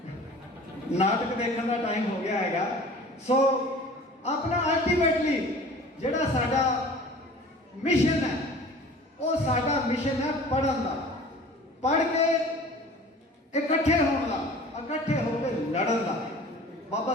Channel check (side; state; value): both; normal; correlation 0.44